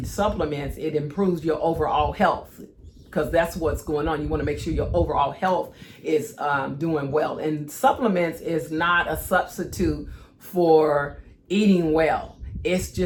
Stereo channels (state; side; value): identical; both; correlation 1.00